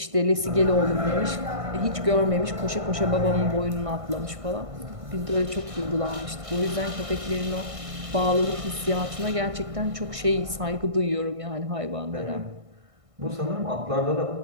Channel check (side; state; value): left; late; 1.6 ms